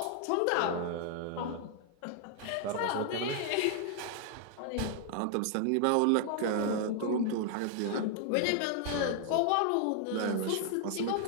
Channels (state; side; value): different; both; correlation 0.00